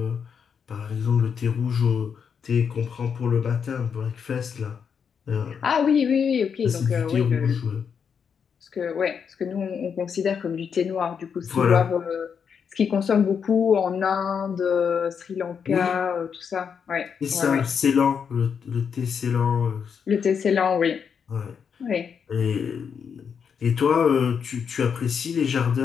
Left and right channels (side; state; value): right; quieter; 6.8 dB